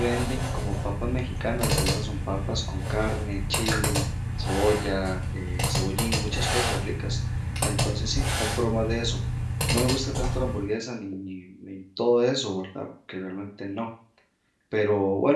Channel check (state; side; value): identical; both; correlation 1.00